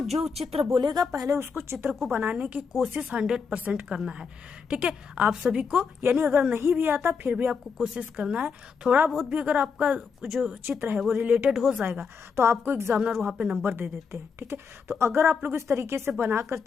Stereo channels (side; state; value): right; quieter; 5.8 dB